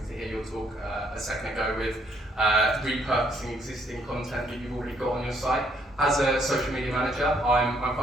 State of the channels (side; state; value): both; normal; correlation 0.69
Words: to hear your talk a second ago with repurposing existing content that you've already got on your site. As a social media manager, I'm